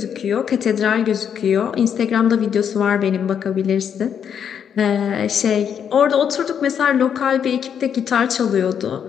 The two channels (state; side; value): quieter; right; 8.1 dB